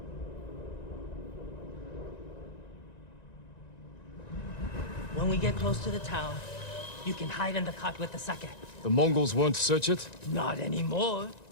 When we get close to the town, you can hide in the cart with the sake. The Mongols won't search it? Not anymore.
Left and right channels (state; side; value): late; right; 1.9 ms